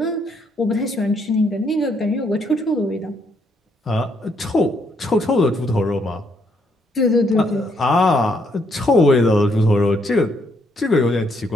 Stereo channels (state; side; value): normal; both; correlation 0.73